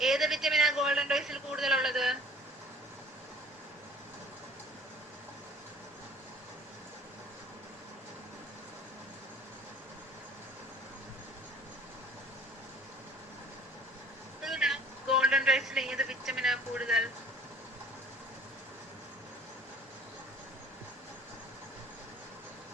ഏത് വിറ്റമിനാ ഗോൾഡൻ റൈസിൽ കൂടുതലുള്ളത്? ഗോൾഡൻ റൈസിൽ ഏത് വിറ്റമിനാ കൂടുതൽ?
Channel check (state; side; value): normal; both; correlation 0.52